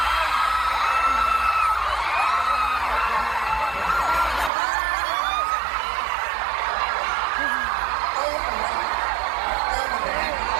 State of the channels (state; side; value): drops out; left; at 4.5 s